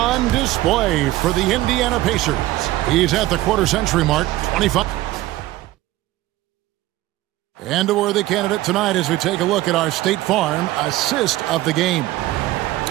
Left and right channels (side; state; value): left; quieter; 16.7 dB